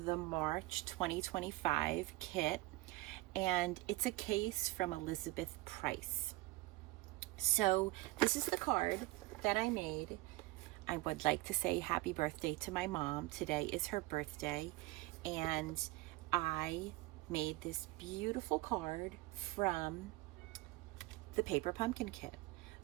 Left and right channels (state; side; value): quieter; left; 20.2 dB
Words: the March 2025 kit, and it's a case from Elizabeth Price. So this is the card that I made. I would like to say happy birthday to my mom. Today is her birthday, and I made this beautiful card from the paper pumpkin kit.